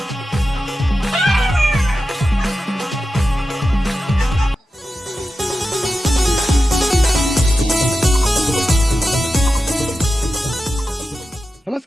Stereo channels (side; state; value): both; normal; correlation 0.92